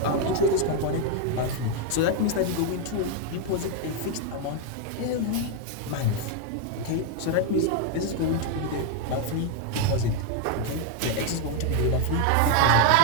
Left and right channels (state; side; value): different; both; correlation 0.01